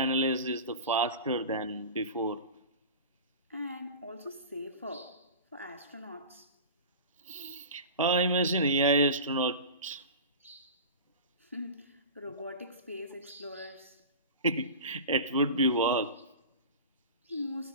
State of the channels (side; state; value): both; inverted; correlation -0.32